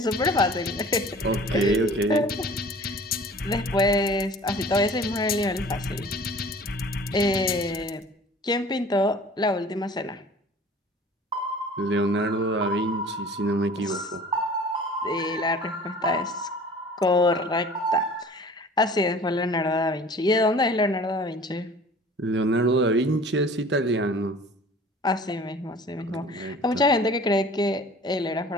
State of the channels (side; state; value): both; normal; correlation 0.46